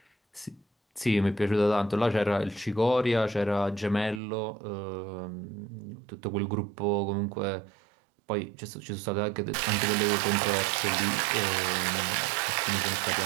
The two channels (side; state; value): left; drops out; at 4.2 s